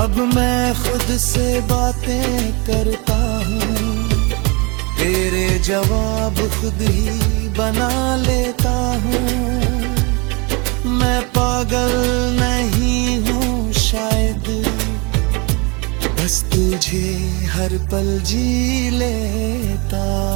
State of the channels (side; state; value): left; quieter; 29.3 dB